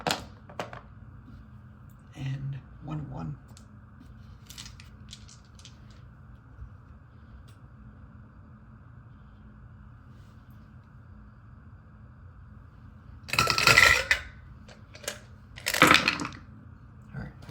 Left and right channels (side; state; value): both; identical; correlation 1.00